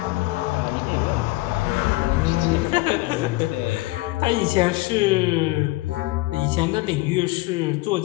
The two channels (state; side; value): quieter; right; 20.7 dB